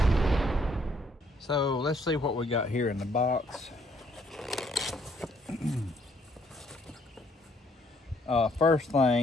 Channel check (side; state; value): both; normal; correlation 0.67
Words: So let's see what we got here in the box. First